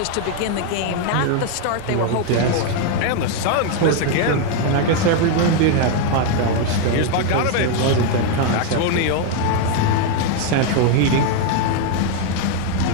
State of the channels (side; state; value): both; different; correlation 0.01